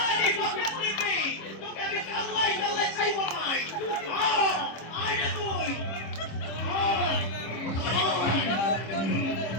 বকত দিবি। তোকে আমি কাল্লাই কাল্লাই ছাইব নাই। আয় না তুই।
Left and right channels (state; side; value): late; right; 25 ms